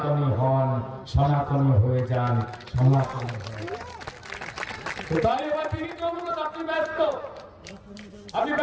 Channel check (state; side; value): identical; both; correlation 1.00